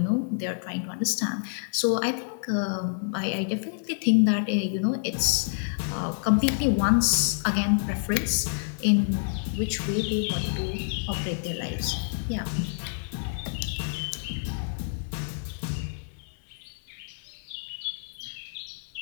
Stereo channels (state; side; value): silent; right; 59 dB below the other